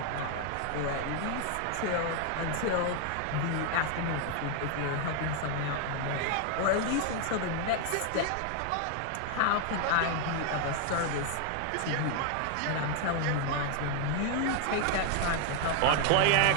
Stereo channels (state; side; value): different; both; correlation 0.00